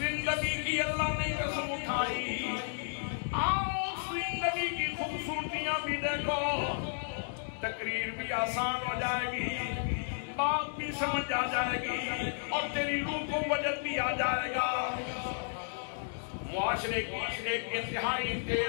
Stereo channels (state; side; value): silent; right; digital silence